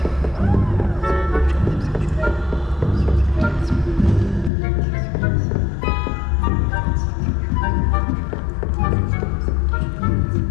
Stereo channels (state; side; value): drops out; right; at 4.5 s